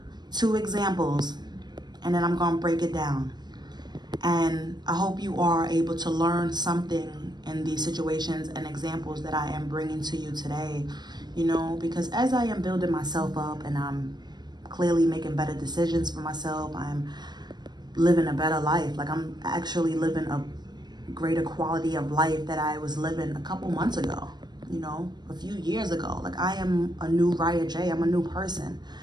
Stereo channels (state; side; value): late; left; 0.21 ms